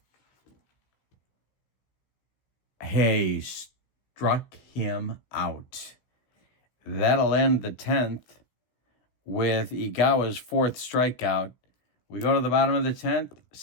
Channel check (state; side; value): late; right; 16 ms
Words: Hey, struck him out. That'll end the 10th with Igawa's 4th strikeout. We go to the bottom of the 10th,